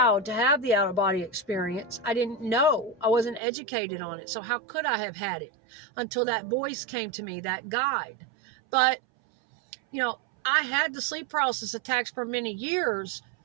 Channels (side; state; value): left; drops out; at 3.4 s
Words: to have the out-of-body experience. I didn't know. I wasn't educated on it. So how could I have had it until that voice came to me, that guide? But, I had the sleep paralysis attacks for many years,